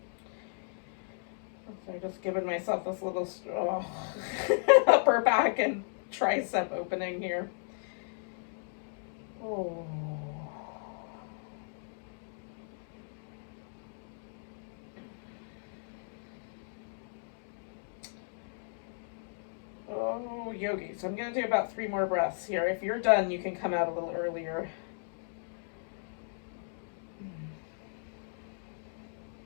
So I've just given myself this little upper back and tricep opening here. Oh. Oh, yogi. So I'm going to do about 3 more breaths here. If you're done, you can come out a little earlier.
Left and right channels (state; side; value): silent; right; digital silence